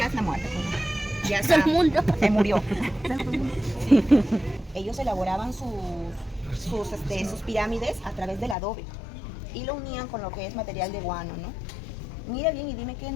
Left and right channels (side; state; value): right; drops out; at 8.6 s